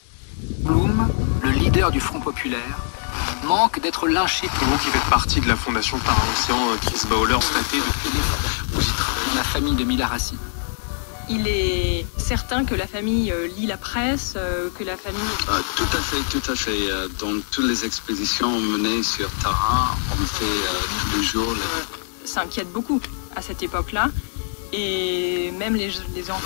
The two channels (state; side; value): silent; right; digital silence